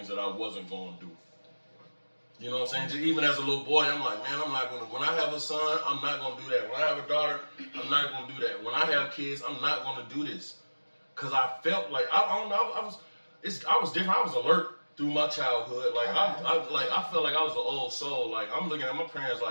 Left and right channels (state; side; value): inverted; both; correlation -1.00